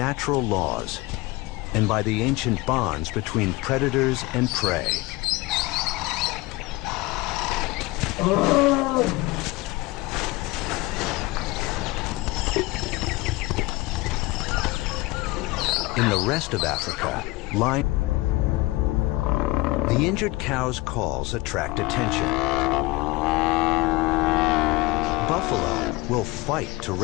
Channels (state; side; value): quieter; right; 21.2 dB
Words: laws and by the ancient bonds between predators and prey. In the rest of Africa, the injured cow's calls attract attention. Buffalo will fight to